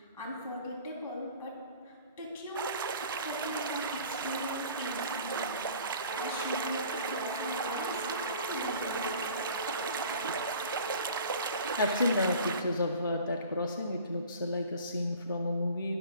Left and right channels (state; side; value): inverted; both; correlation -0.46